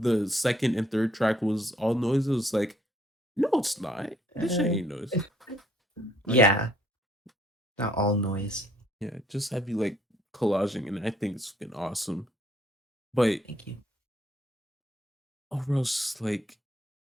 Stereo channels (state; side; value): normal; both; correlation 0.66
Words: second and third track was all noise. It was like, no, it's not. This shit Uh, ain't noise. Like, yeah, not all noise. yeah, just have you like collaging, and I think it's fucking awesome. But Thank you. overall, it's just like